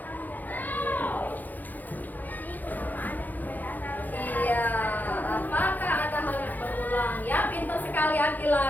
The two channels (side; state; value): right; late; 0.084 ms